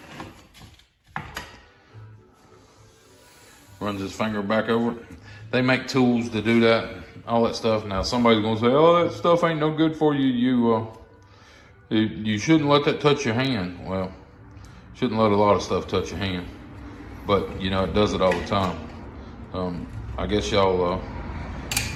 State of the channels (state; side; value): identical; both; correlation 1.00